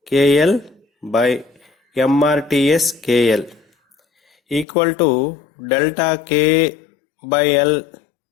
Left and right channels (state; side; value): drops out; right; at 4.7 s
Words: KL by MRTS KL delta K/L